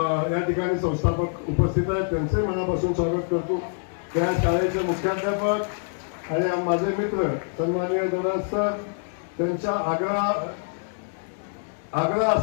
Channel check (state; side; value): silent; right; digital silence